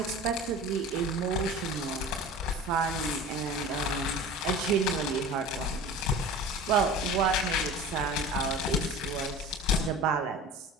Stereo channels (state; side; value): normal; both; correlation 0.37